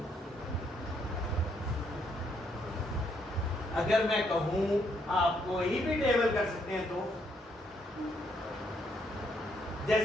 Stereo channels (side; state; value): both; normal; correlation 0.72